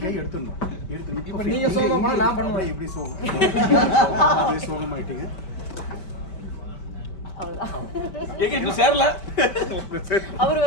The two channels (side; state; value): right; late; 5.2 ms